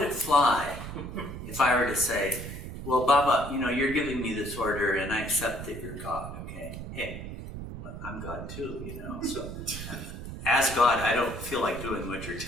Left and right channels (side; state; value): right; noise; rumble, 9 dB below the sound